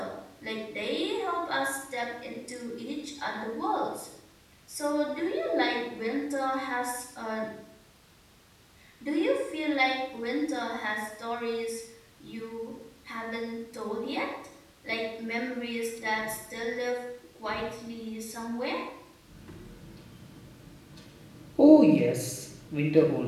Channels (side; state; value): both; identical; correlation 1.00